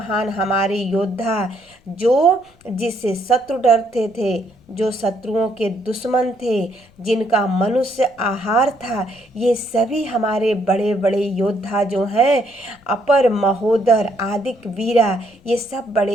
हमारे योद्धा जो जिससे शत्रु डरते थे, जो शत्रुओं के दुश्मन थे, जिनका मनुष्य आहार था, ये सभी हमारे बड़े बड़े योद्धा जो हैं, अपर महोदर आदिक वीरा, ये सब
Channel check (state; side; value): noise; left; rumble, 30 dB below the sound